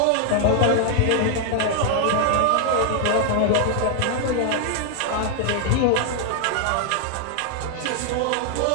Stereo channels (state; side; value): different; both; correlation 0.00